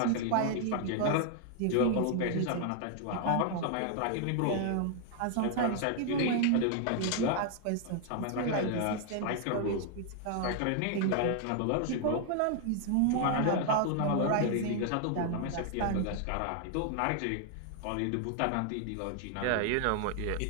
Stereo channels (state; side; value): different; both; correlation 0.00